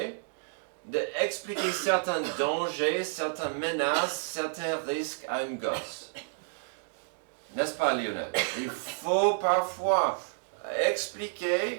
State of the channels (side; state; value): left; silent; digital silence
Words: d'expliquer certains dangers, certaines menaces, certains risques à une gosse. N'est-ce pas, Lionel? Il faut parfois